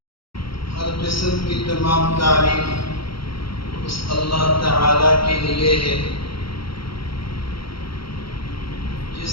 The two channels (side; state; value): right; late; 0.74 ms